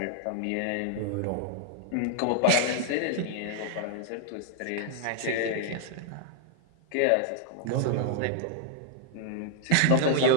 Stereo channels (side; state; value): both; different; correlation 0.00